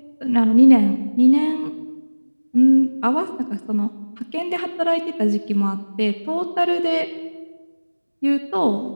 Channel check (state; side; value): inverted; both; correlation -1.00